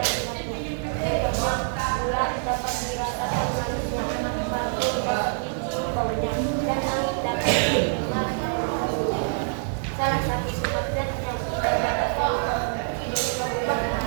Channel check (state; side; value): silent; left; digital silence